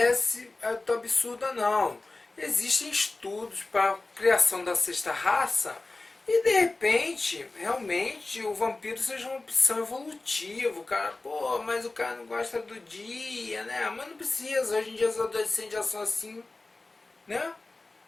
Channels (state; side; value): quieter; right; 3.2 dB